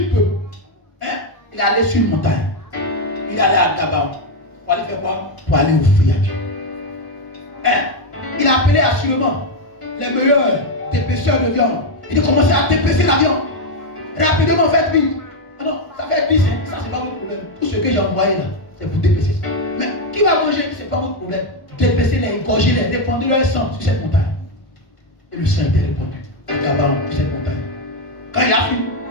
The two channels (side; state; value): right; late; 1.4 ms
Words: bœufs. Il est allé sur une montagne. Il est allé à Gabaon. Pour aller faire quoi? Pour aller offrir à Dieu. Il a appelé assurément les meilleurs dépêcheurs de viande. Il a commencé à dépêcher la viande. Rapidement, faites vite. Ah non, ça fait 10, ça c'est pas votre problème. Tout ce que j'ai envoyé là, c'est pour dépêcher ça. Mais qui va manger, c'est pas votre problème. Dépêchez-les, égorgez-les, répandez leur sang sur cette montagne. Et le sang était répandu à Gabaon, sur cette montagne. Quand il a fini,